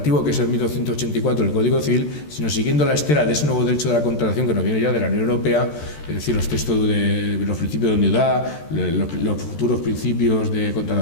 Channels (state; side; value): late; right; 13 ms